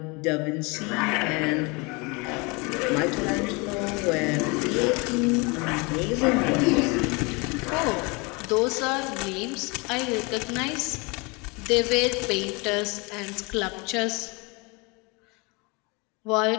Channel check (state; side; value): quieter; right; 28.5 dB